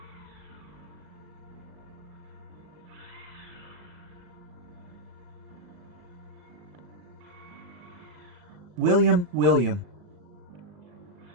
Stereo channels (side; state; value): left; late; 37 ms